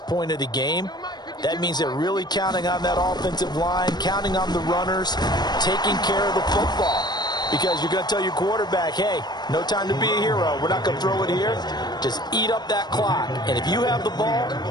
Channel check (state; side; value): late; right; 0.20 ms